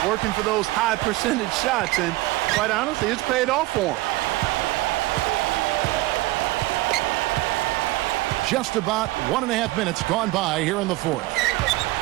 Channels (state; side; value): quieter; left; 19.6 dB